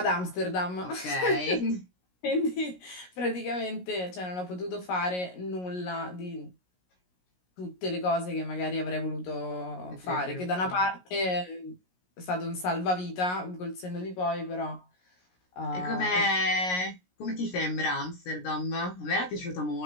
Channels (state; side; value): late; right; 16 ms